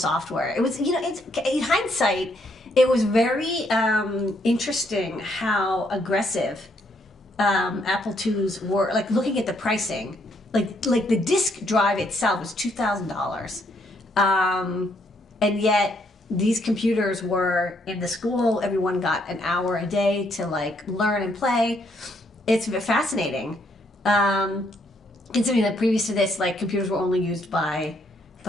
It was, in hindsight, it was very interesting how aggressive Apple IIs were. Like, looking at the pricing, like the disk drive itself was $2,000, and yet these computers were in the school. Everyone got an hour a day to, like, learn and play. It's fascinating. Considering that previous to this, like, computers were only used by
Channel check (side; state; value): both; normal; correlation 0.72